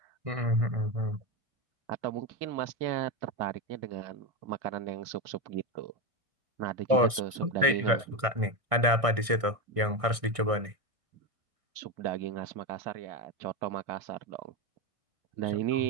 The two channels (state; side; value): late; left; 1.6 ms